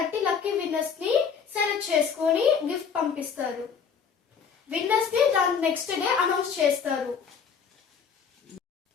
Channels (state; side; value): quieter; right; 6.6 dB